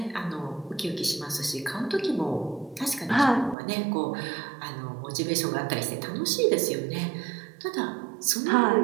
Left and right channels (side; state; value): left; drops out; at 3.6 s